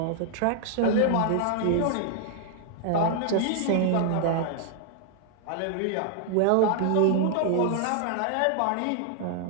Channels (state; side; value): different; both; correlation 0.00